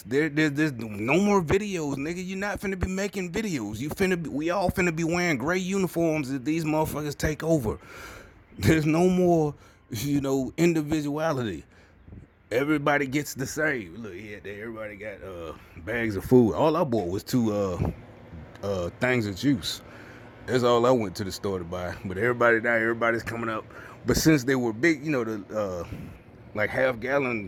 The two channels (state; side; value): identical; both; correlation 1.00